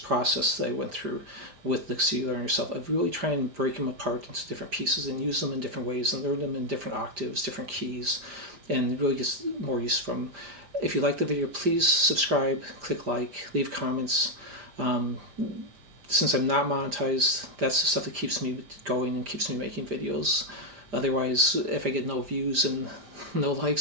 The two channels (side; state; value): left; late; 5.0 ms